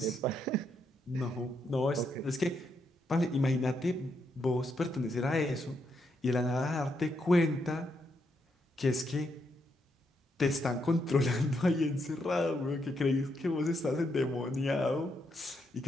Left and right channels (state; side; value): normal; both; correlation 0.79